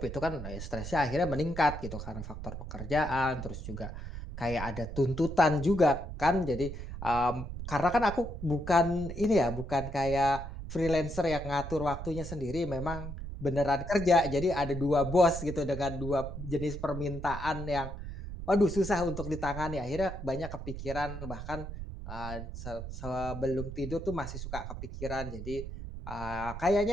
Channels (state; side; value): noise; right; rumble, 8 dB below the sound